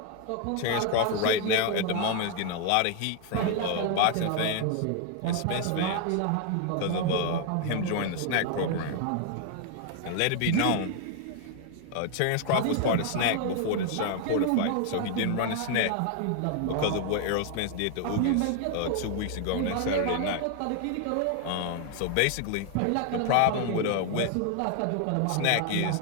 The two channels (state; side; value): different; both; correlation 0.00